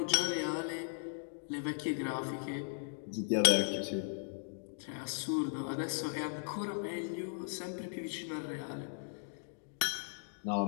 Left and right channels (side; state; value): right; silent; digital silence